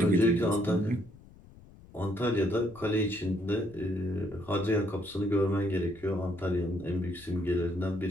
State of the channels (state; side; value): noise; left; rumble, 22 dB below the sound